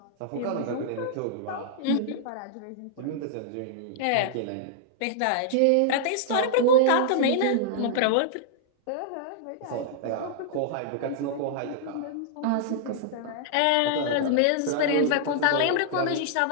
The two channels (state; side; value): different; both; correlation -0.01